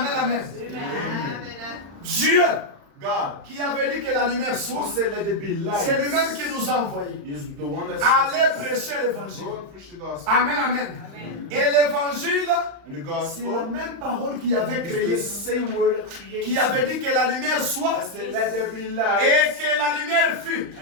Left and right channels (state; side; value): late; left; 35 ms